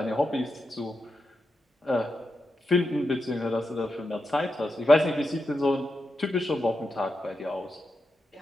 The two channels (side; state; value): both; normal; correlation 0.87